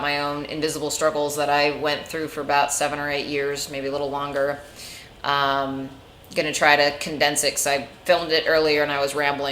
my own invisible struggles that I went through for about 7 or 8 years, maybe a little longer. Gonna try to condense it because I filmed it earlier and I was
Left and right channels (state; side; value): identical; both; correlation 1.00